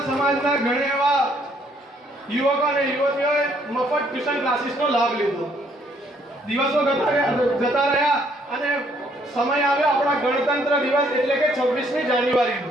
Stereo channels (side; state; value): both; normal; correlation 0.67